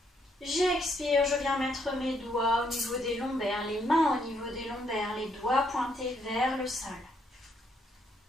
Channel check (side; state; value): both; normal; correlation 0.72